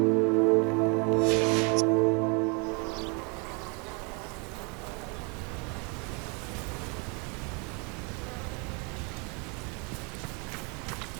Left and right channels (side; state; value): left; quieter; 32.2 dB